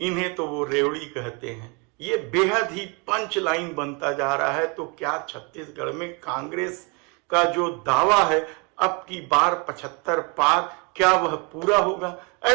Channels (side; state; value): left; quieter; 31.9 dB